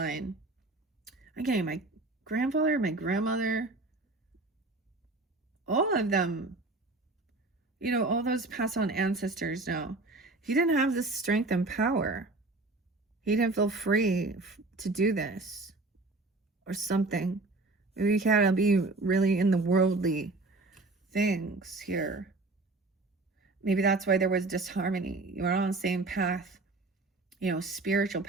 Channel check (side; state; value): left; quieter; 3.2 dB